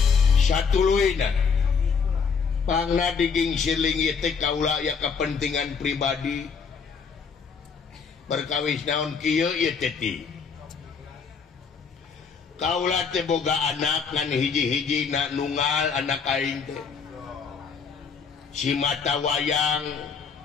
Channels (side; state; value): right; quieter; 5.8 dB